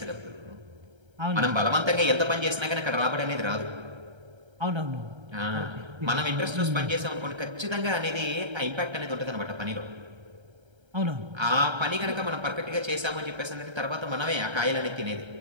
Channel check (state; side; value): late; left; 1.3 ms